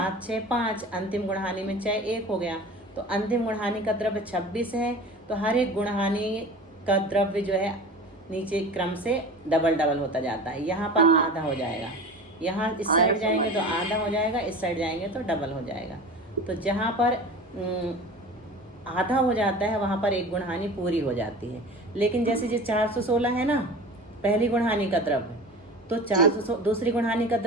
6, 5, अंतिम गुणहानि में चय 1 हो गया। तो अंतिम गुणहानि का द्रव्य 26 है, तो हर एक गुणहानि का द्रव्य जो है नीचे क्रम से डबल डबल होता जाता है। यहाँ पर आधा हो जाएगा, यहाँ इस साइड जाएंगे तो आधा हो जाएगा, इस साइड जाएंगे तो डबल हो जाएगा। तो जहाँ पर आधा हो जाता है वहाँ पर एक गुणहानि पूरी हो जाती है। लेकिन जैसे जो 416 है ना पहली गुणहानि का द्रव्य, तो 400 दूसरी गुणहानि का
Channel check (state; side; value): normal; both; correlation 0.36